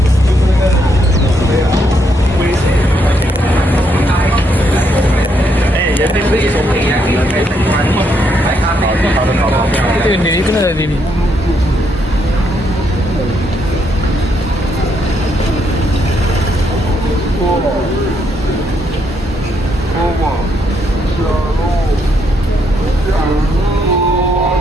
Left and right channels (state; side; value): normal; both; correlation 0.75